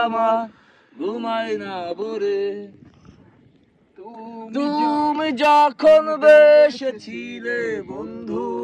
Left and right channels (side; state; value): both; identical; correlation 1.00